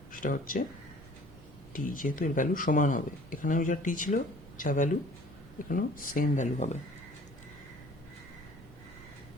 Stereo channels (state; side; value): normal; both; correlation 0.51